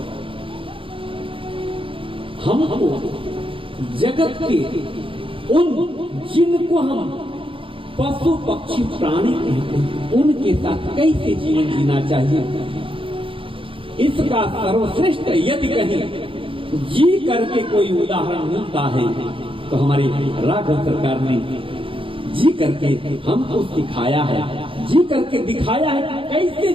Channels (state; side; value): late; left; 0.25 ms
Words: हमको जगत के उन जिनको हम पशु पक्षी प्राणी कहते हैं उनके साथ कैसे जीवन जीना चाहिए, इसका सर्वश्रेष्ठ यदि कहीं जी करके कोई उदाहरण मिलता है तो हमारे राघव सरकार ने जी करके हमको सिखाया है, जी करके दिखाया है कि कैसे